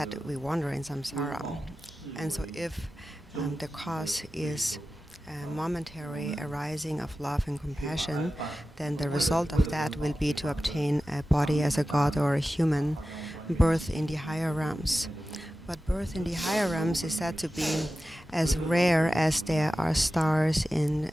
we wander in samsara. And so if the cause is a momentary arising of love and compassion, then the result of that will be to obtain a body as a god or a human, birth in the higher realms. But birth in the higher realms is said to be as rare as there are stars in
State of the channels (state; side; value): normal; both; correlation 0.94